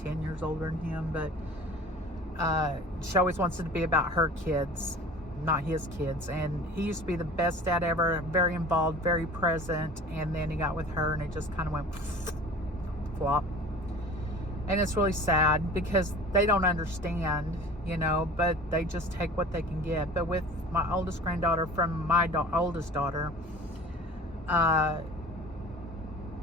years older than him, but she always wants it to be about her kids, not his kids. And he used to be the best dad ever, very involved, very present, and then he got with her and it just kind of went flop. And it's really sad because they don't understand, you know, but they just take what they can get. But with my oldest granddaughter from my oldest daughter, her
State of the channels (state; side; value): normal; both; correlation 0.42